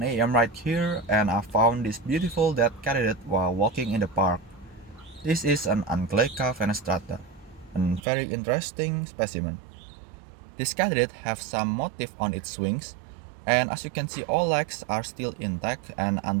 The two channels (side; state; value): left; drops out; at 8.0 s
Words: a.m. right here and I found this beautiful dead katydid while walking in the park. This is an Anchyleca fenestrata, a very interesting specimen. This katydid has some motif on its wings, and as you can see all legs are still intact and